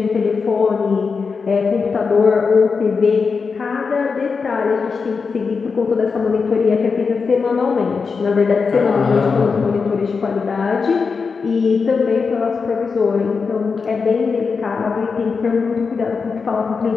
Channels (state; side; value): quieter; right; 5.1 dB